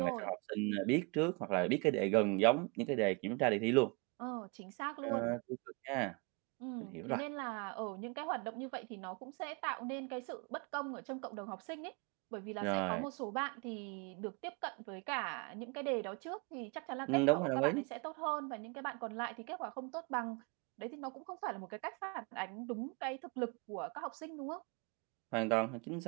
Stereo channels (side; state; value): left; quieter; 31.8 dB